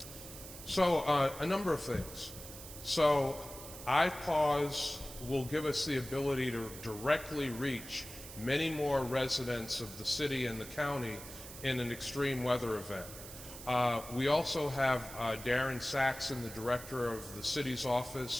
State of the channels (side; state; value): right; noise; hiss, 13 dB below the sound